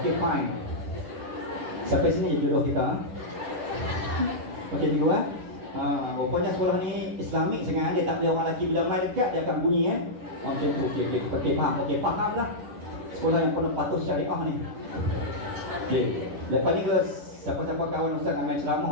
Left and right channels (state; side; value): late; left; 10 ms